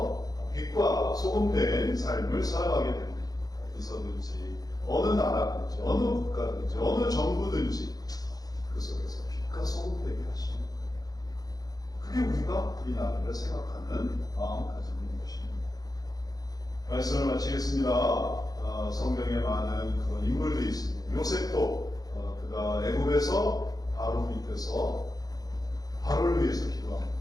빛과 소금된 삶을 살아가게 됩니다. 어디서든지 어느 나라든지 어느 국가든지 어느 정부든지 그 속에서 빛과 소금되게 하시는 그게 우리가 이 나라를 생각하는 마음가짐인 것입니다. 말씀을 마치겠습니다. 성경에 많은 그런 인물들이 있습니다. 요셉도 그가 애굽에서 바로 밑에서 바로를 위해서 기도한 거죠.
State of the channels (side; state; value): right; late; 0.18 ms